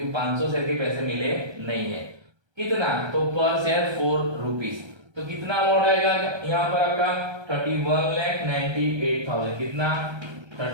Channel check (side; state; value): left; late; 1.3 ms